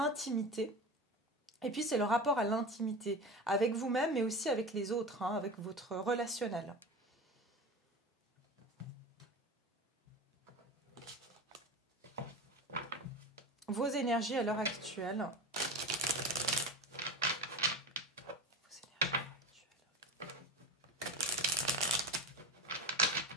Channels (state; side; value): normal; both; correlation 0.29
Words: Et puis c'est le rapport à l'intimité, avec vous-même mais aussi avec les autres, hein, avec votre relationnel. Vos énergies à l'heure actuelle.